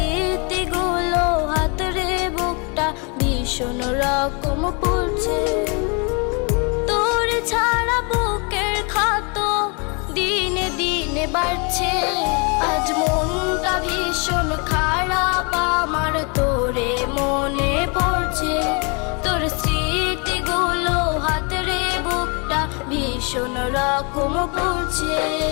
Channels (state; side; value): quieter; right; 33.2 dB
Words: হাতরে বুকটা ভীষণ রকম পড়ছে। তোর ছাড়া বুকের ক্ষত দিনে দিনে বাড়ছে। আজ মনটা ভীষণ খারাপ আমার, তোরে মনে পড়ছে। তোর স্মৃতিগুলো হাতরে বুকটা ভীষণ রকম পড়ছে।